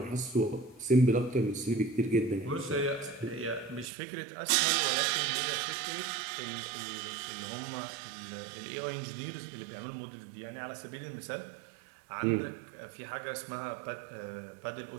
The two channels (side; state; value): left; drops out; at 3.9 s